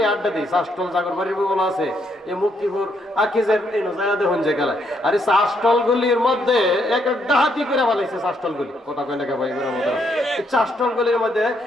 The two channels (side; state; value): both; normal; correlation 0.74